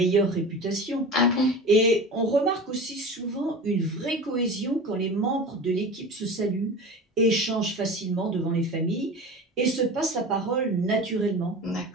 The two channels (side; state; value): both; normal; correlation 0.33